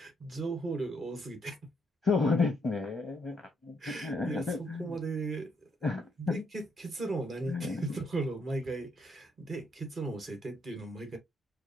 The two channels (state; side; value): normal; both; correlation 0.74